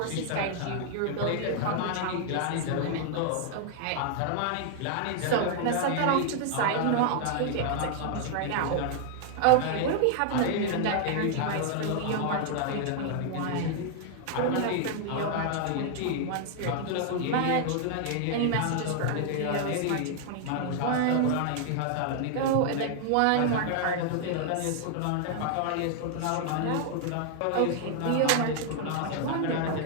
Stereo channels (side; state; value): both; different; correlation 0.00